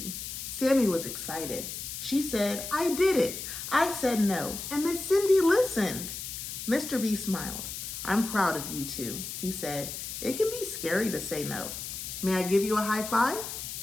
Sammy was excited. She said, "I did it. I said no, and Miss Cindy listened. Mr. B smiled. I'm proud of you two, he said. It can be scary to say no. May I give you a high five?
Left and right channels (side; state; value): left; noise; hiss, 7 dB below the sound